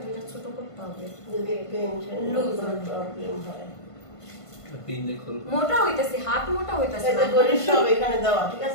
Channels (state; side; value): late; right; 1.5 ms